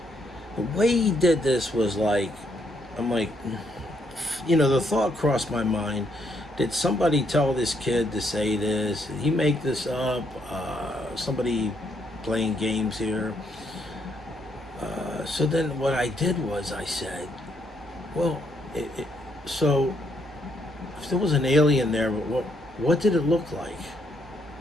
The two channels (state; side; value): normal; both; correlation 0.74